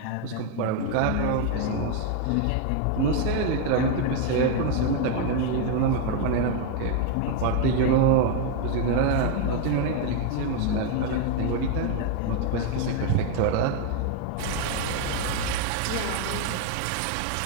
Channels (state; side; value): different; both; correlation 0.01